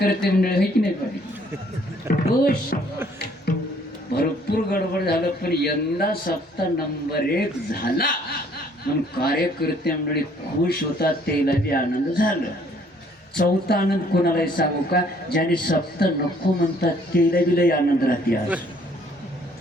मंडळ आहे की नाही पाटील? खुश, भरपूर गडबड झालं, पण यंदा सप्ताह नंबर 1 झाला म्हणून कार्यकर्ते मंडळी खुश होतात. त्याला बी आनंद झाला. चौथा आनंद कोणालाही सांगू का? ज्याने सप्ताह नको म्हणतात त्याला बी लई आनंद राहते. आज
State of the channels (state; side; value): normal; both; correlation 0.61